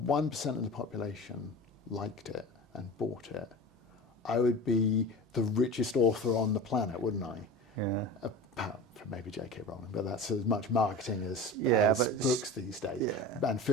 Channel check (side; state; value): both; normal; correlation 0.33